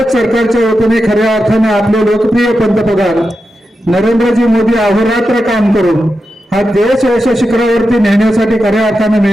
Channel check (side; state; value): both; normal; correlation 0.89